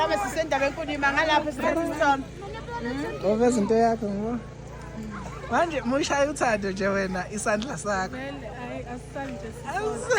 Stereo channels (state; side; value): identical; both; correlation 1.00